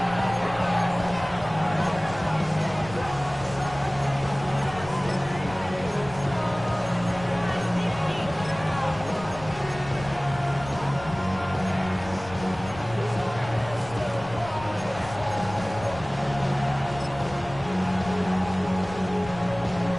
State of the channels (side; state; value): left; noise; rumble, 15 dB below the sound